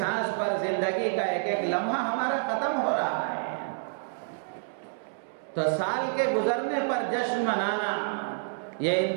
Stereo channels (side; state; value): left; silent; digital silence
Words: پر زندگی کا ایک ایک لمحہ ہمارا ختم ہو رہا ہے۔ تو سال کے گزرنے پر جشن منانا یہ